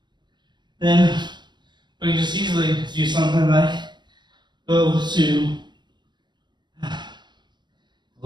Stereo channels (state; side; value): late; left; 0.22 ms